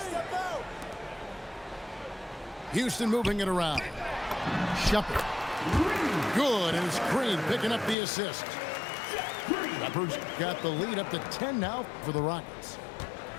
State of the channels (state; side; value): drops out; right; at 8.0 s